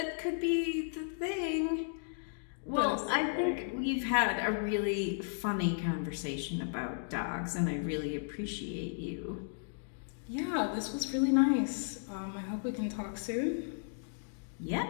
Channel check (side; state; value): right; silent; digital silence